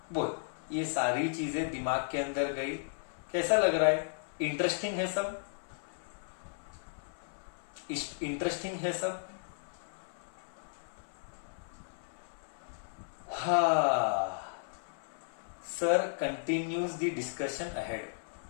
बोल, ये सारी चीजें दिमाग के अंदर गई. कैसा लग रहा है. इंटरेस्टिंग है सब. हाँ. Sir continues the discussion ahead.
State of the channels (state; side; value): silent; right; 54 dB below the other